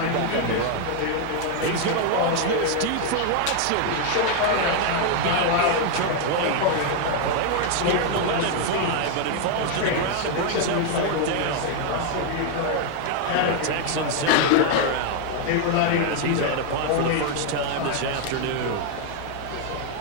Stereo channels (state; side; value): different; both; correlation 0.00